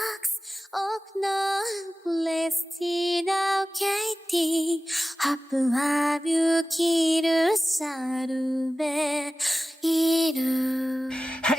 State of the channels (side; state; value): both; normal; correlation 0.96